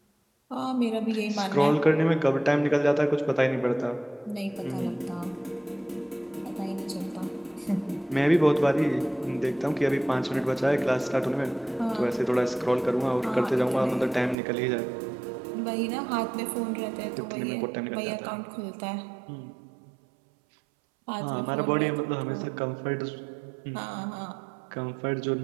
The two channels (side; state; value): left; drops out; at 14.4 s